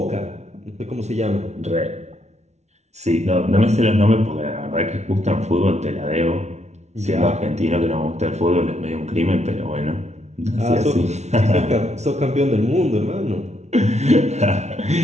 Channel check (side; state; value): left; late; 0.32 ms